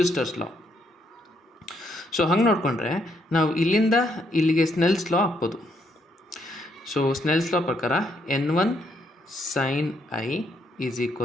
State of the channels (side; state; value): both; normal; correlation 0.74